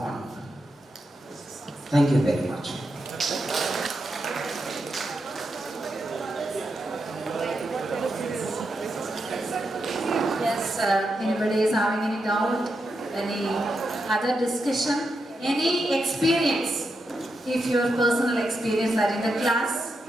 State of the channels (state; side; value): normal; both; correlation 0.85